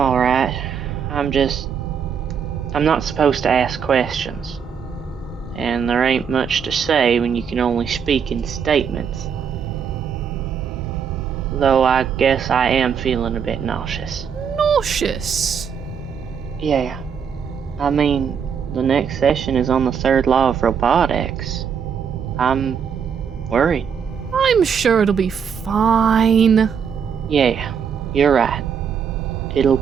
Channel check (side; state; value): left; quieter; 7.1 dB